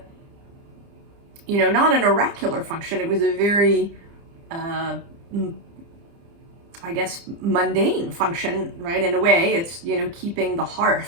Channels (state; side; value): late; left; 30 ms